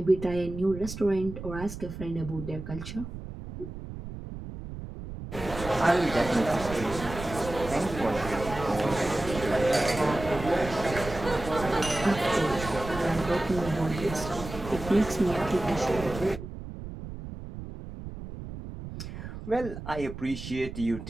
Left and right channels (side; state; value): right; noise; rumble, 10 dB below the sound